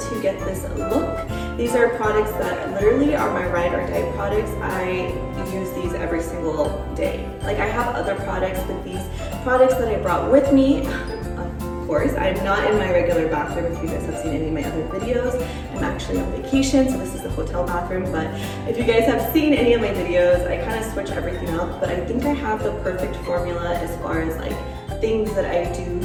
to get this look. These are products that literally are my ride or die products. I use these every single day. Like, I have other products, but these products that I brought with me, of course, I'm not in my regular bathroom. If you guys have seen any of my other videos, I'm actually on vacation, so this is the hotel bathroom. But if you guys have seen any of my videos, I kind of switch everything up, but I think I have the perfect formula as far as like things that I do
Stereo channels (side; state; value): both; identical; correlation 1.00